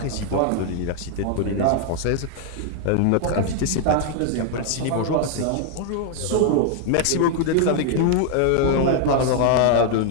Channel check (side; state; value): both; different; correlation 0.00